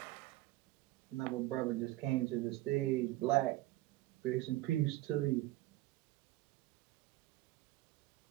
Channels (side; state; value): left; quieter; 17.0 dB